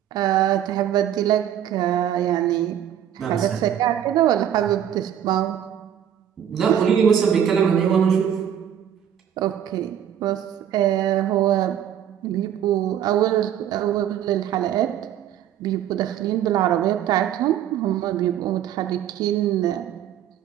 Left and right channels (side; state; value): left; quieter; 10.0 dB